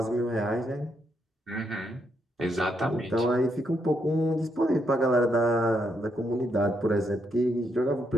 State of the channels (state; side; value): normal; both; correlation 0.78